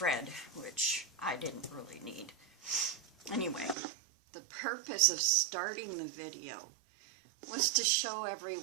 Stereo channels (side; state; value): left; drops out; at 3.8 s